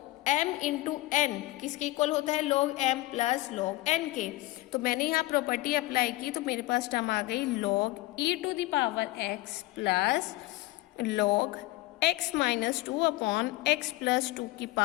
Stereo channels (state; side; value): quieter; right; 18.7 dB